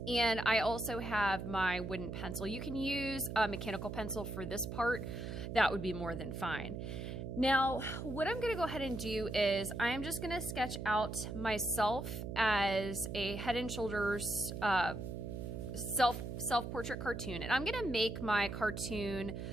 And I also have my wooden pencil. You can use a mechanical pencil for this part. That would be more than fine. Now, what I'm going to go ahead and do is I'm just going to sketch out myself as a head and shoulders self-portrait cartoon. And I'm going to make my cartoon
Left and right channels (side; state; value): right; noise; hum, 6 dB below the sound